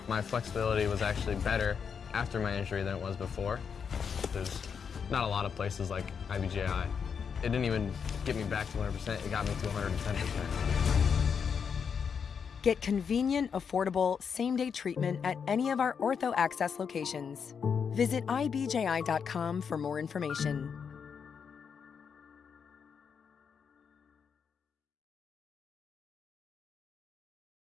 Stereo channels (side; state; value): right; quieter; 6.6 dB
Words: My flexibility was actually better after my injury than it was before. There's not a lot of places like IBJI. It didn't even get me back to 100%, it got me to 110%. Get convenient, affordable, same-day treatment at any of our Ortho Access locations. Visit ibji.com for more information.